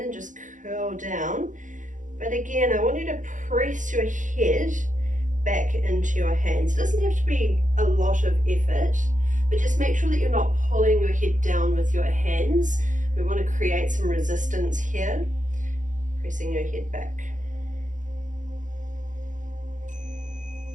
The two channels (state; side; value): late; left; 0.37 ms